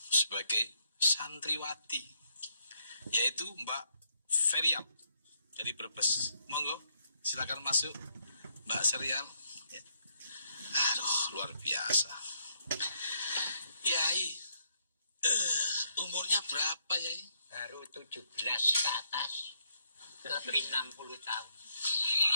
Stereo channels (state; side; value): inverted; both; correlation -0.74